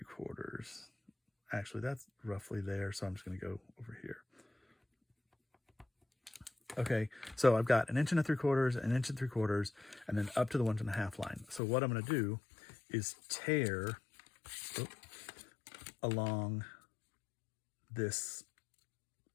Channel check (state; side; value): drops out; right; at 11.6 s